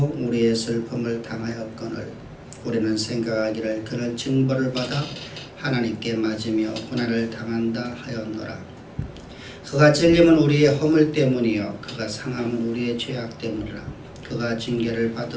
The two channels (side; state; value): both; identical; correlation 1.00